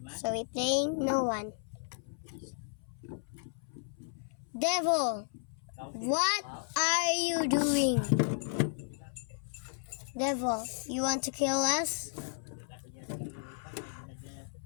So we playing no one. Devil, what are you doing? Devil, you want to kill us?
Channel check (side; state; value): right; silent; 55 dB below the other